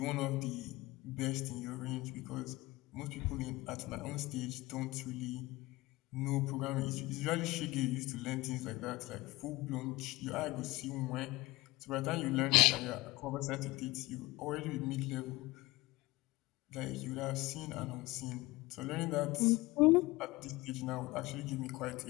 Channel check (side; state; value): right; quieter; 20.3 dB